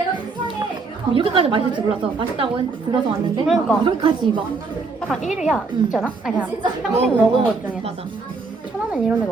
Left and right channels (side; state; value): left; quieter; 4.2 dB